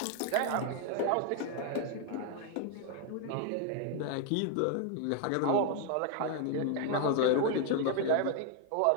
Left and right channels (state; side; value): different; both; correlation 0.00